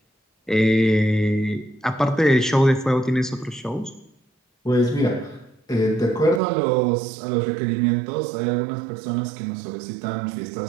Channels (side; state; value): left; drops out; at 6.4 s